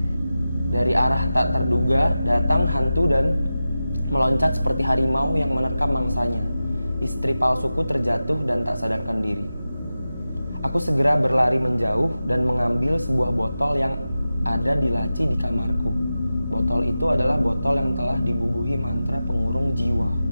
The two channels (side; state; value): both; inverted; correlation -0.94